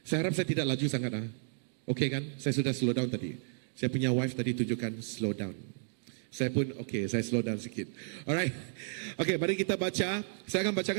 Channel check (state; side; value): silent; left; digital silence